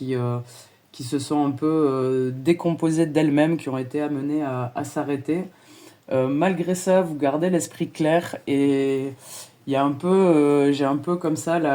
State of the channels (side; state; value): both; identical; correlation 1.00